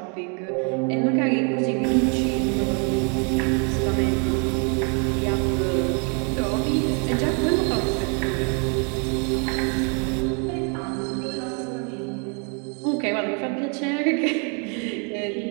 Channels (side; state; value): left; quieter; 37.3 dB